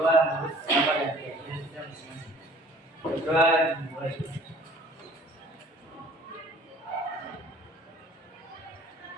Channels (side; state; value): both; normal; correlation 0.51